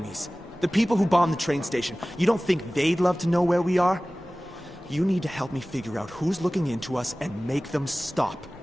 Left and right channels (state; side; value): normal; both; correlation 0.98